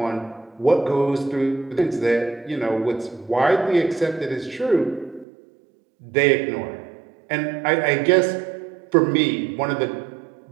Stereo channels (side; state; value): left; drops out; at 5.2 s